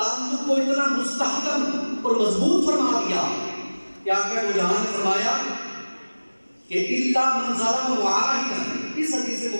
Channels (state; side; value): inverted; both; correlation -1.00